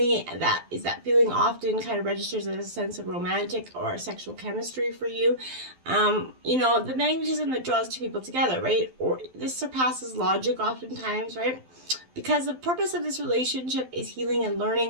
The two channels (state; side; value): late; left; 12 ms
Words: That feeling often kind of registers as a sense of romantic or sexual chemistry for you. The magnetism that draws two people together, right? Or this surpasses logic oftentimes, right? Because the purpose of this relationship is healing and